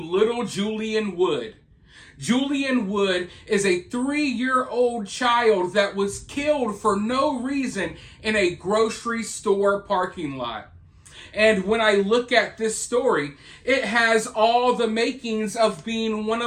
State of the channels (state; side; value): identical; both; correlation 1.00